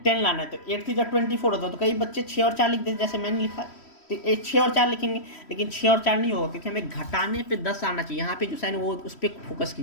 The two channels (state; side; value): late; right; 3.1 ms